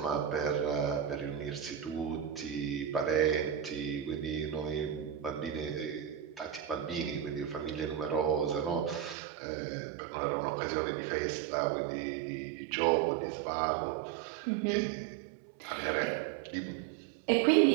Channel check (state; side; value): drops out; left; at 9.2 s